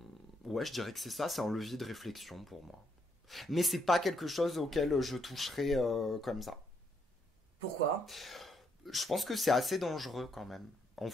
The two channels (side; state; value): both; normal; correlation 0.75